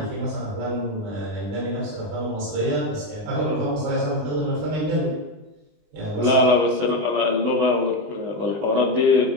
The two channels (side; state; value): left; late; 20 ms